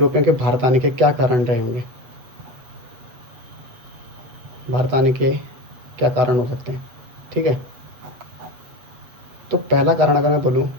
के भारत आने के क्या कारण रहे होंगे, भारत आने के क्या कारण हो सकते हैं, ठीक है। तो पहला कारण अगर मैं बोलूँ,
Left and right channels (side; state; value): left; late; 7.9 ms